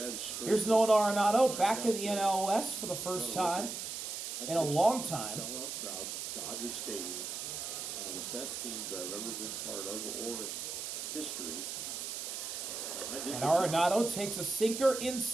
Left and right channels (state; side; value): noise; right; hiss, 5 dB below the sound